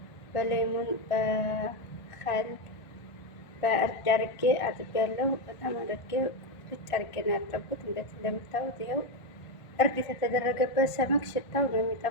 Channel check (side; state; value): right; late; 1.5 ms